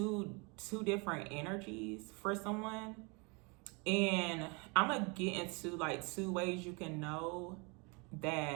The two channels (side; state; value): left; quieter; 30.7 dB